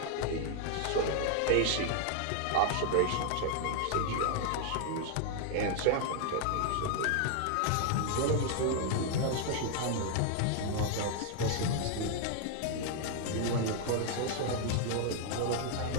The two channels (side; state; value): both; different; correlation 0.00